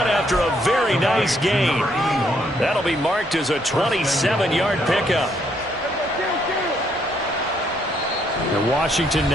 after a very nice gain. That'll be marked as a 27-yard pickup. And Washington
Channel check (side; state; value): both; normal; correlation 0.71